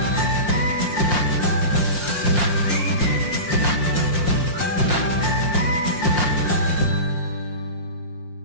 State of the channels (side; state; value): right; late; 5.7 ms